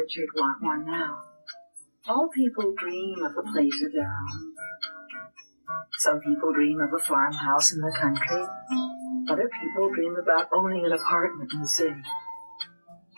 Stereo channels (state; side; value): inverted; both; correlation -1.00